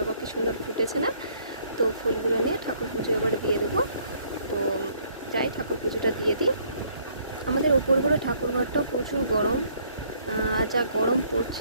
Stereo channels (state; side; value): inverted; both; correlation -0.64